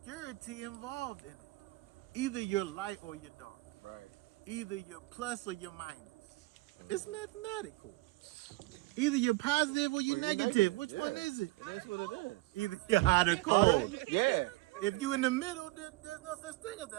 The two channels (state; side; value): quieter; left; 21.0 dB